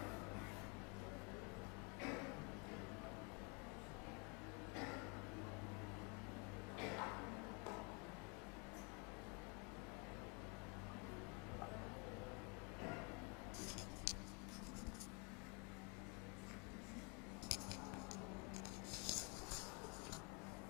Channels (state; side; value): quieter; right; 33.3 dB